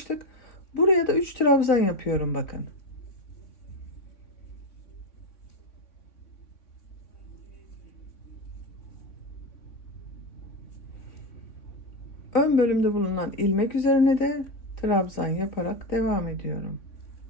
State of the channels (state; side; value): late; right; 3.6 ms